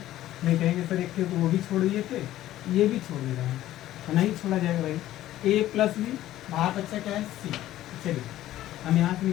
नहीं कहेंगे सर एक थे तो वो भी छोड़ दिए थे, ये भी छोड़ दे रहे हैं, तो नहीं छोड़ा जाएगा भाई। ए प्लस बी बाहर बच्चा क्या है सी। चलिए हम यहाँ से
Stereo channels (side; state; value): right; quieter; 13.9 dB